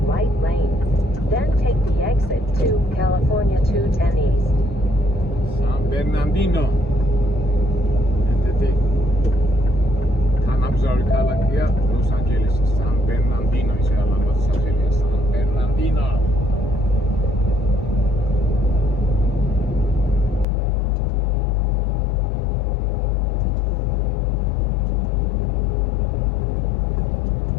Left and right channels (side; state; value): right; drops out; at 20.5 s